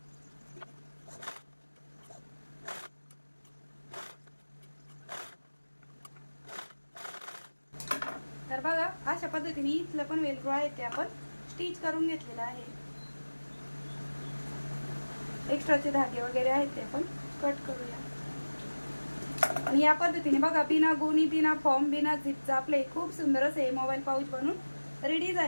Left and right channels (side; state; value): both; inverted; correlation -1.00